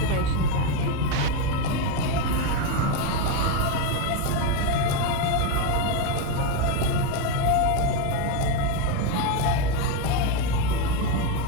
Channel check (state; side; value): different; both; correlation 0.03